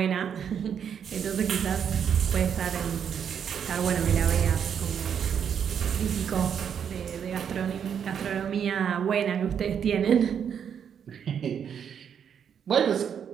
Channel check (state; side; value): quieter; left; 8.0 dB